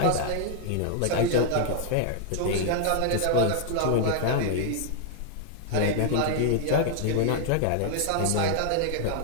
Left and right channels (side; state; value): both; different; correlation 0.00